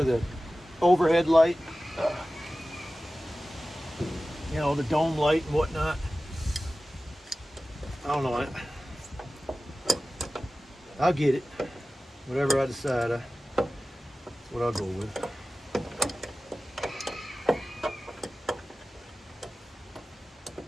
the overhead light. You know, the dome light and whatnot. I don't know. I'll get it. Whatever I decide, that's what I'll go with.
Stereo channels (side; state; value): both; normal; correlation 0.96